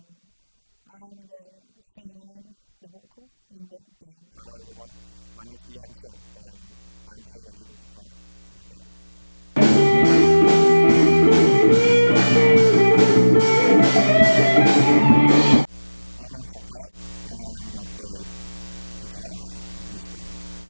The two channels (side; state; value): both; inverted; correlation -1.00